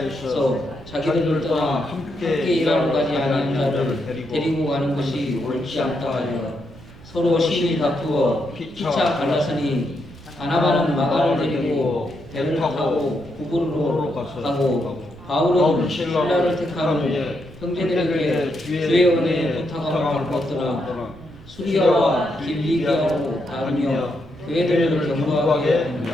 자기들을 떠나 함께 일하러 가지 아니한 자를 데리고 가는 것이 옳지 않다 하여 서로 심히 다투어 피차 갈라서니 바나바는 마가를 데리고 배를 타고 구부로로 가고 바울은 신라를 택한 후에 형제들에게 주의 은혜에 부탁함을 받았더라. 수리아와 길리기아로 다루며 교회들을 경고하게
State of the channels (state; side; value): noise; right; rumble, 20 dB below the sound